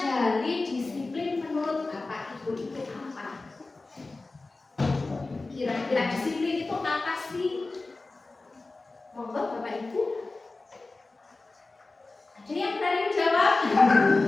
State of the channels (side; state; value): right; quieter; 3.4 dB